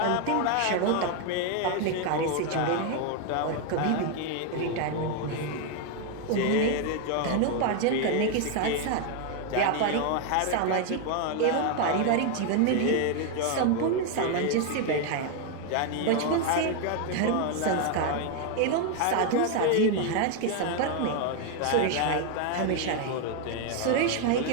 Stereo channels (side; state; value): both; different; correlation 0.01